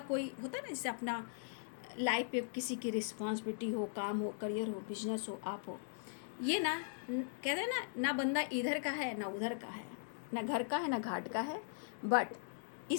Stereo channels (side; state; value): right; silent; digital silence